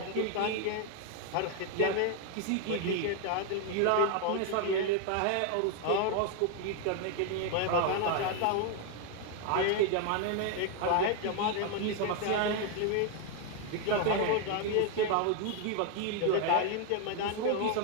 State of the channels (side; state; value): both; different; correlation 0.01